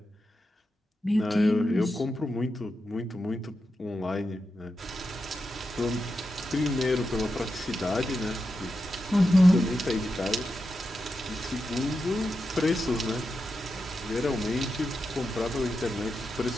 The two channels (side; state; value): both; normal; correlation 0.88